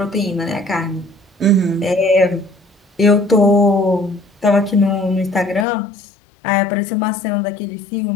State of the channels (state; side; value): drops out; right; at 5.7 s